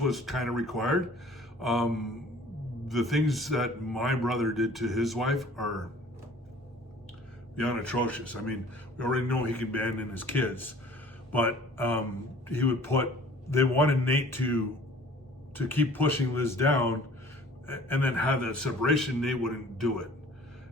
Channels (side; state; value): both; normal; correlation 0.50